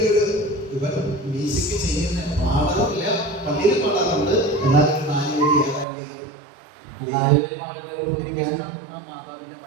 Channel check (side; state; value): left; drops out; at 5.9 s